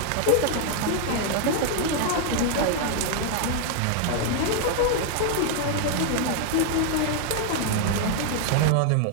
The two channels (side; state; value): both; different; correlation 0.00